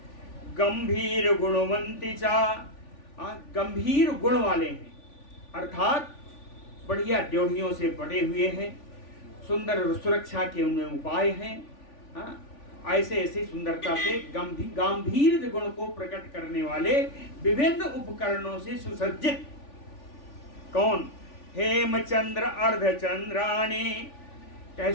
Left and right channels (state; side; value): late; right; 3.5 ms